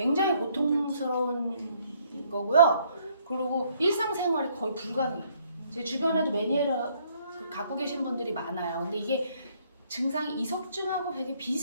고통스러운 거고요. 그리고 일상생활이 거의 불가능해요. 제 주변에도 메니에르 갖고 계신 분들이 많아요. 근데 이게 증상이 이석증하고 되게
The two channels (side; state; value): both; inverted; correlation -0.65